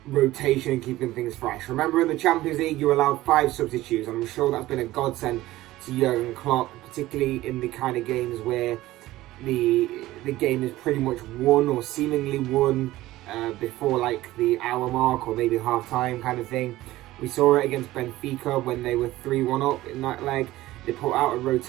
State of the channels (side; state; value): left; quieter; 16.7 dB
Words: rotation and keeping things fresh. Remember, in the Champions League, you allowed 5 substitutes, and I'm sure that's been a godsend to Jurgen Klopp, particularly in the kind of games where the game is pretty much won or seemingly won before like the hour mark or maybe half time kind of thing. We saw it against Benfica when they were 3-1 up in that leg. They put out a